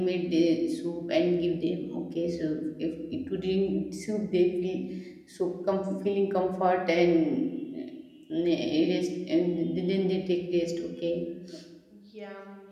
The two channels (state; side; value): identical; both; correlation 1.00